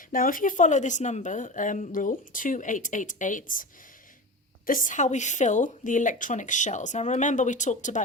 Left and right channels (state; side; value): normal; both; correlation 0.27